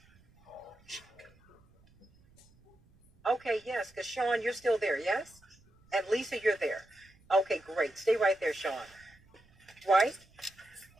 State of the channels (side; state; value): right; noise; rumble, 29 dB below the sound